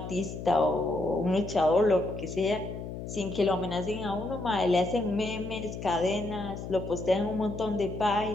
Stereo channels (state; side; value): noise; left; hum, 8 dB below the sound